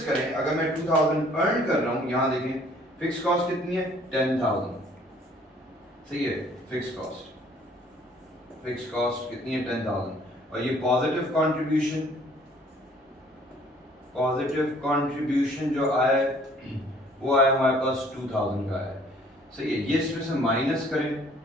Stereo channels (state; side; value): normal; both; correlation 0.58